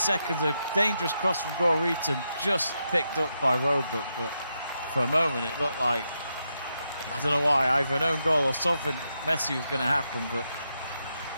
A dangerous cross from Goreton, just picked up by Roebuck, but for a moment it looked like, I don't know why, either an own goal or something messy was going to happen, but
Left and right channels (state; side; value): inverted; both; correlation -0.84